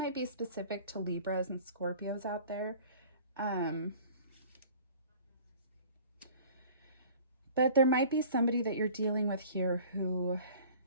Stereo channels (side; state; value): both; inverted; correlation -0.47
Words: be specific to Libras and Scorpios out there. But there might be somebody that you're dealing with here who,